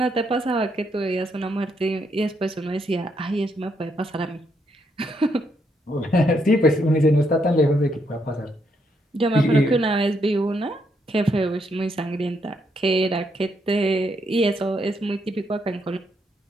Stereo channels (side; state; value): both; normal; correlation 0.76